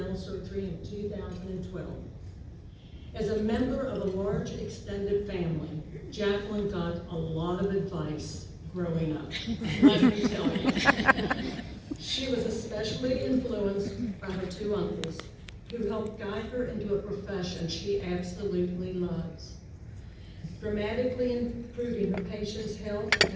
surgery in 2012. As a member of a large extended family, Jacqueline got a lot of advice growing up, let me tell you. She was especially influenced by her two uncles, who helped guide her into a profession she absolutely loves, dramatically improving her patients' health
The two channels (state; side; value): identical; both; correlation 1.00